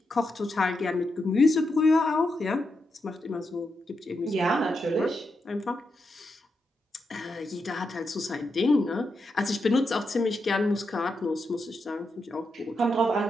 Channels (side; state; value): both; normal; correlation 0.85